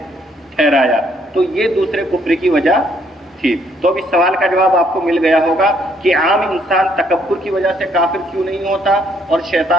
ٹھہرایا, تو یہ دوسرے کفر کی وجہ تھی. تو اب اس سوال کا جواب آپ کو مل گیا ہوگا کہ عام انسان تکبر کی وجہ سے کافر کیوں نہیں ہوتا اور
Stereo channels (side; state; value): both; normal; correlation 0.68